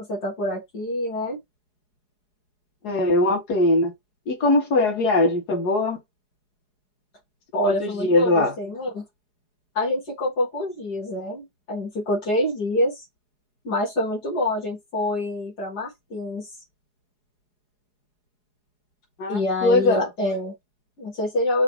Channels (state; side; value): late; right; 4.8 ms